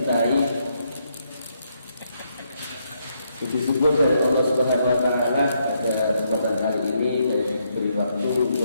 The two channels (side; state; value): both; inverted; correlation -0.76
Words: Puji syukur dari Allah Subhanahu wa Ta'ala pada kesempatan kali ini saya diberi waktu